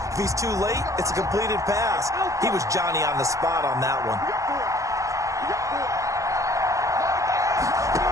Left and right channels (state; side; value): late; left; 0.16 ms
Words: If he's too late, it's a completed pass. He was Johnny on the spot on that one.